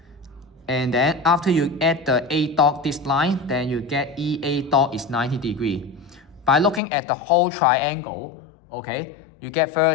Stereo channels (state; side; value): drops out; right; at 6.8 s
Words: And then after you add the A dot this line, then you get EA dot is 90 degrees. By looking at the whole triangle, okay, you get